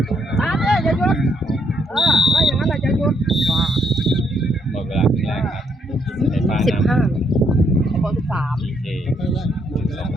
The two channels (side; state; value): both; normal; correlation 0.72